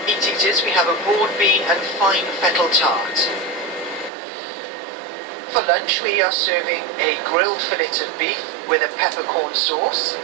we have a broad bean and fine fettle tart. For lunch, we are serving a grilled fillet of beef with a peppercorn sauce,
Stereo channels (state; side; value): drops out; left; at 4.1 s